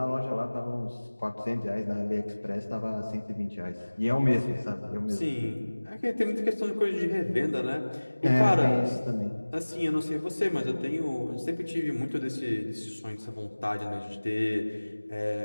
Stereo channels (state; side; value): inverted; both; correlation -1.00